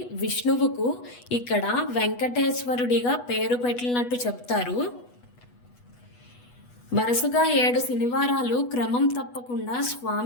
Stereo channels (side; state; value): right; late; 8.2 ms